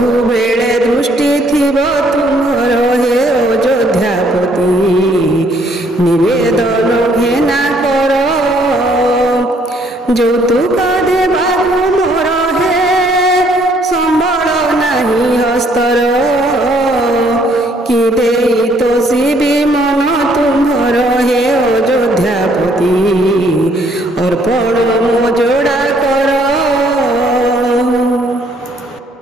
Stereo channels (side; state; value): both; normal; correlation 0.65